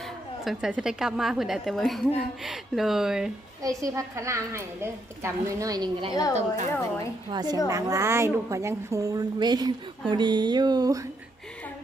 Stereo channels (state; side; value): normal; both; correlation 0.77